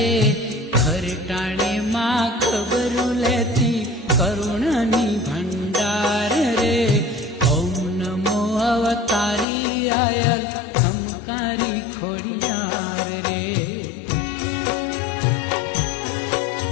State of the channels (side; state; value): right; drops out; at 9.5 s